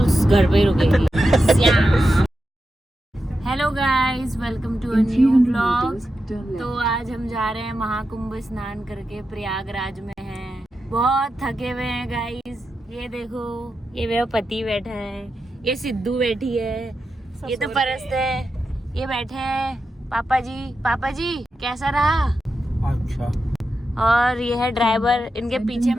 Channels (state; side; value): normal; both; correlation 0.89